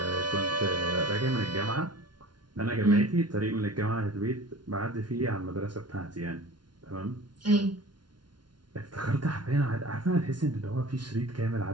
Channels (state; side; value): late; left; 0.70 ms